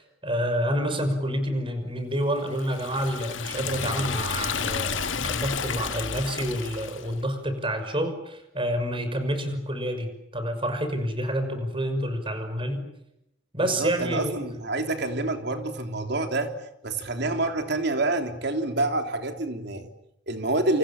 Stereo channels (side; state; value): both; normal; correlation 0.32